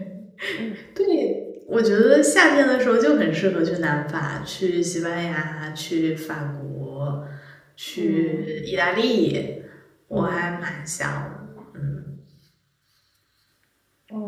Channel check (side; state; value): both; identical; correlation 1.00